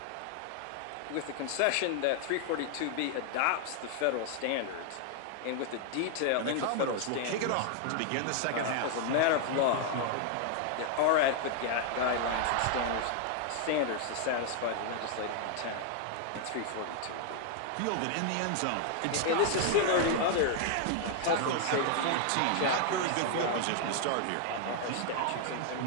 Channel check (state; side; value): different; both; correlation 0.00